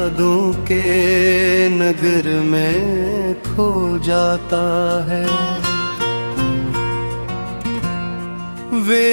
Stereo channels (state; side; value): inverted; both; correlation -1.00